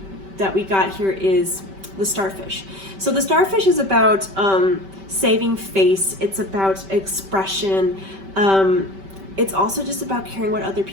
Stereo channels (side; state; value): left; late; 5.2 ms